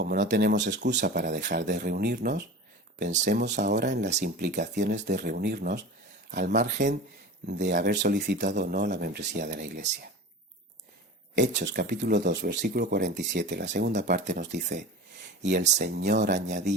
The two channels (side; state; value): both; normal; correlation 0.34